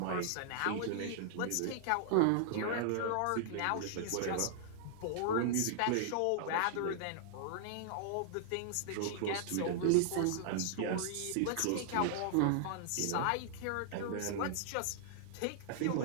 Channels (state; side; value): different; both; correlation -0.01